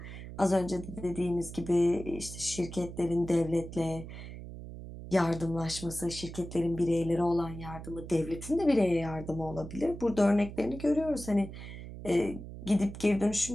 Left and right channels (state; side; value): noise; right; hum, 11 dB below the sound